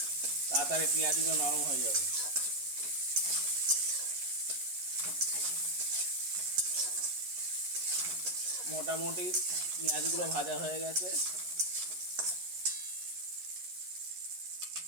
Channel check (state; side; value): late; left; 11 ms